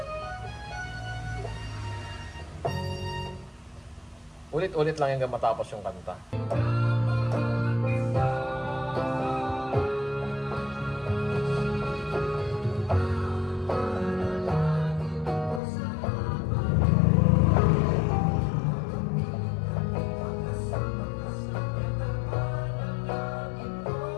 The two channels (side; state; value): right; drops out; at 15.6 s